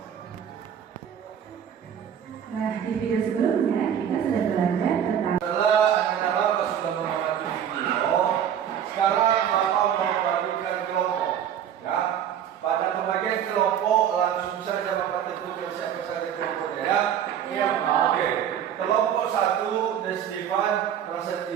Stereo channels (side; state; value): left; quieter; 9.3 dB